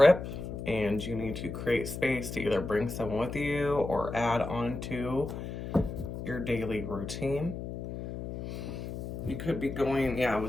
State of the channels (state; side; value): noise; left; hum, 7 dB below the sound